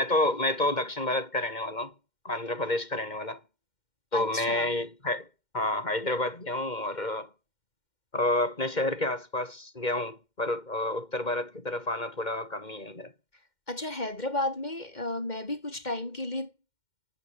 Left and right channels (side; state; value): right; late; 2.1 ms